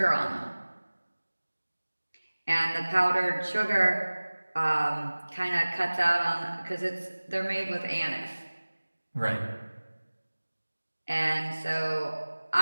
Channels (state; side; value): inverted; both; correlation -1.00